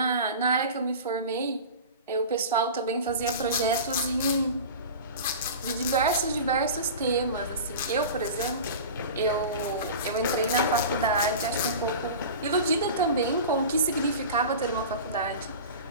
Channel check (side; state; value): both; inverted; correlation -0.33